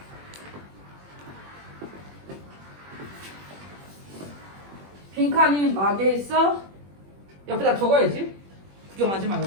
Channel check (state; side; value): late; left; 21 ms